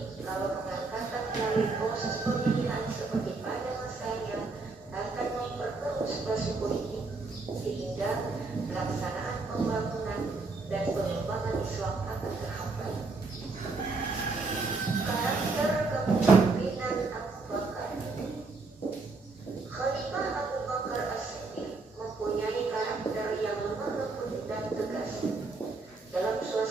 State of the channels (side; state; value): left; quieter; 3.8 dB